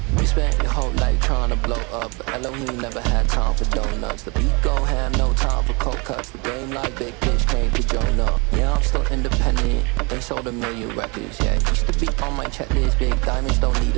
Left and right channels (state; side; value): quieter; left; 29.7 dB